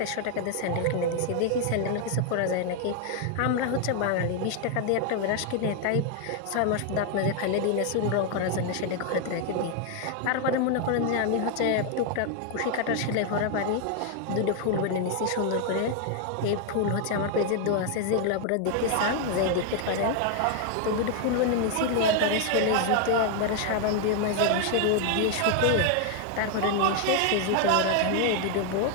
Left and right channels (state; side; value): different; both; correlation 0.00